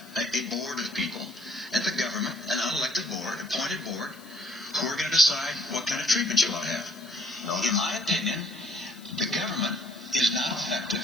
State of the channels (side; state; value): left; noise; hiss, 22 dB below the sound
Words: a board of people at the government, an unelected board, appointed board, who are going to decide what kind of treatment you ought to have. In my opinion, the government is not effective